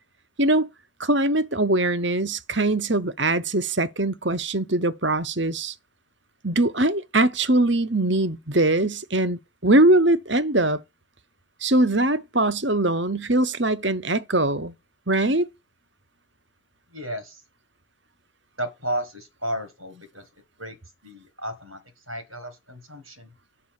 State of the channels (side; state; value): both; normal; correlation 0.21